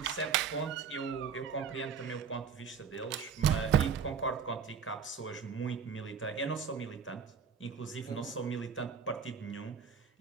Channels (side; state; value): left; quieter; 6.6 dB